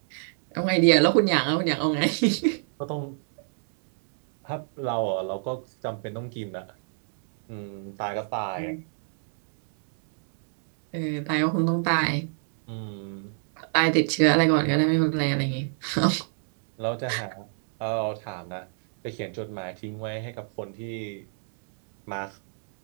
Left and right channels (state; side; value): silent; left; digital silence